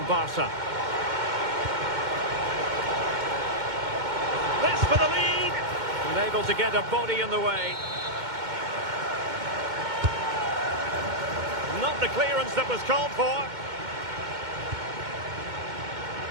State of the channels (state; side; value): late; left; 2.1 ms